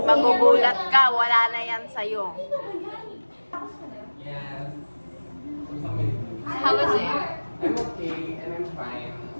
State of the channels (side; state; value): both; inverted; correlation -1.00